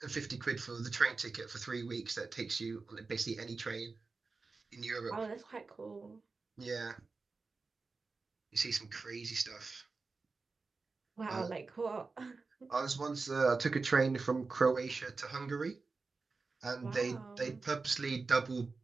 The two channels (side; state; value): left; quieter; 4.1 dB